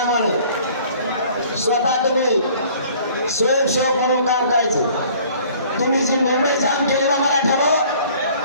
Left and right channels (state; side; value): inverted; both; correlation -0.53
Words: नाही. स्वतः तुम्ही स्वयंसेवक म्हणून काम करायचं. तुम्ही जी मुंबई जाम केलेला मराठ्यावर